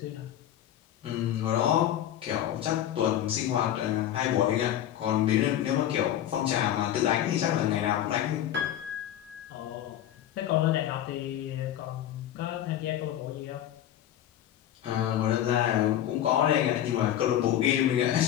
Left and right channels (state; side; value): quieter; right; 11.5 dB